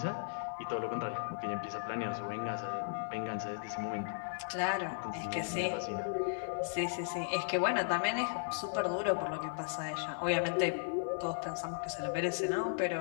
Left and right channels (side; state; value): right; silent; digital silence